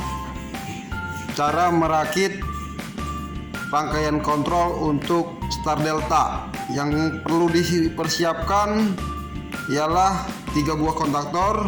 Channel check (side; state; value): both; identical; correlation 1.00